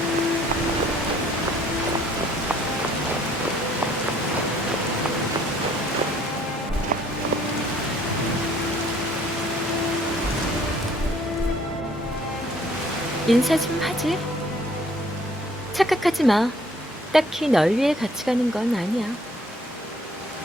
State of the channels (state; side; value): normal; both; correlation 0.60